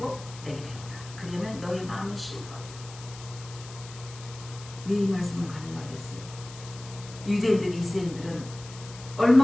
내게 배우라. 그러면 너의 마음이 쉬거든. 왜 이 말씀을 가능하겠어요? 유대인들, 이스라엘들은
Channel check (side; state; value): left; noise; hiss, 16 dB below the sound